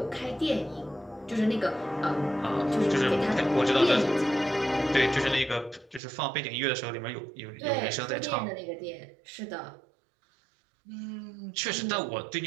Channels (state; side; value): drops out; left; at 6.0 s